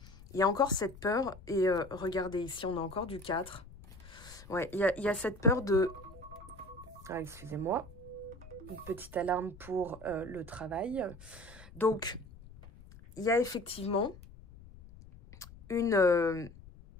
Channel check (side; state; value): left; noise; rumble, 19 dB below the sound